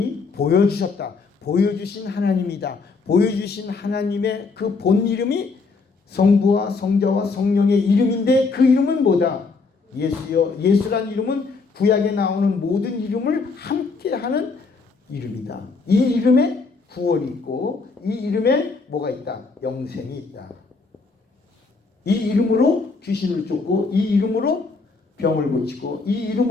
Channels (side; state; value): right; quieter; 4.3 dB